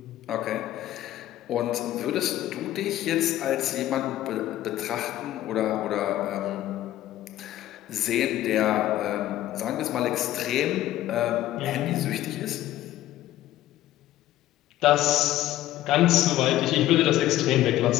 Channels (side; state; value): right; quieter; 14.1 dB